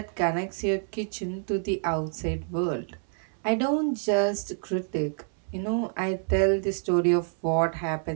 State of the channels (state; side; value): silent; left; 60 dB below the other